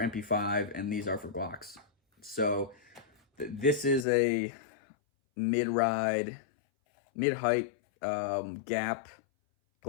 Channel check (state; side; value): drops out; right; at 4.0 s